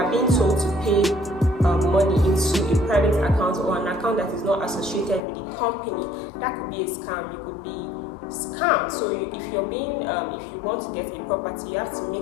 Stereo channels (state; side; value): drops out; right; at 5.2 s